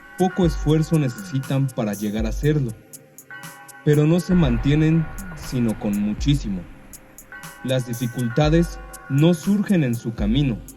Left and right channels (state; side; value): identical; both; correlation 1.00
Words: poco esfuerzo necesitan para llegar a serlo, pero no se mantienen sino con muchísimo. Las dificultades no surgen en su camino,